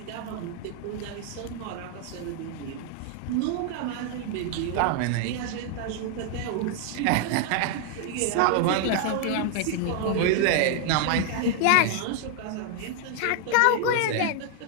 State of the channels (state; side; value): different; both; correlation 0.00